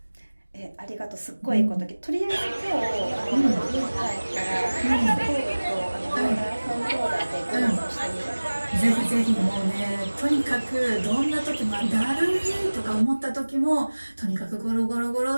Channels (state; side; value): inverted; both; correlation -1.00